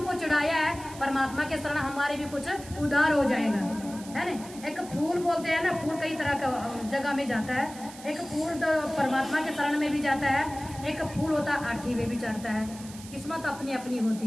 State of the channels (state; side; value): noise; right; hiss, 17 dB below the sound